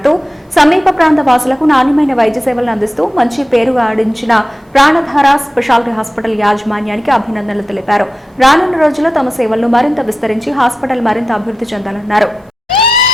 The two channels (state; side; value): normal; both; correlation 0.92